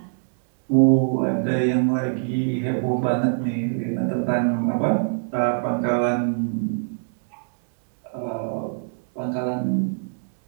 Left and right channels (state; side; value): silent; left; 63 dB below the other